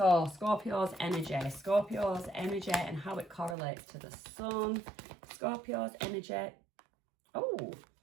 Scorpio's energy and how it correlates to the sun. Scorpio's energy. Oh,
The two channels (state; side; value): drops out; left; at 3.6 s